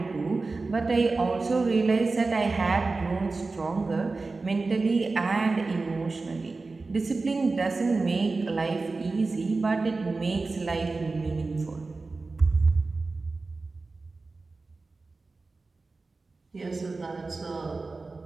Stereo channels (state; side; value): quieter; left; 3.7 dB